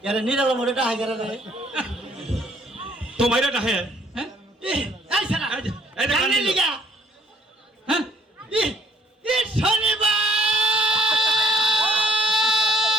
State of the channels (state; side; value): normal; both; correlation 0.64